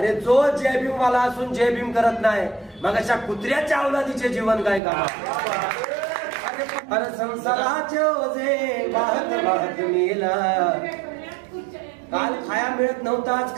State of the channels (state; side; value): drops out; left; at 4.8 s